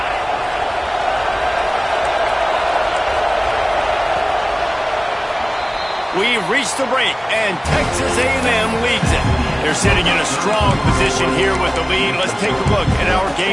We've reached the break, and Texas A&M leads it. They're sitting in a strong position here with the lead. Let's take a look at our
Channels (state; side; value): identical; both; correlation 1.00